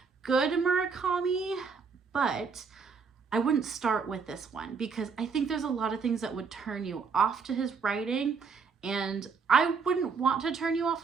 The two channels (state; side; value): quieter; left; 5.4 dB